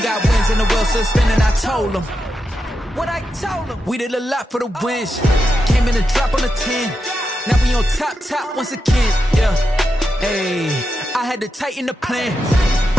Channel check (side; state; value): both; normal; correlation 0.87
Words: got wins and the wheels still spinning. I told them what I told them. We did a lot for the wins. Came in a drop on a 10. Now we on top once again. Yeah. Hey, I had to tighten the plan.